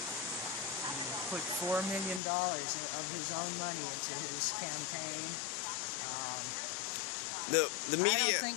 put $4 million of his own money into his campaign. The media... I don't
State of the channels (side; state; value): right; drops out; at 2.2 s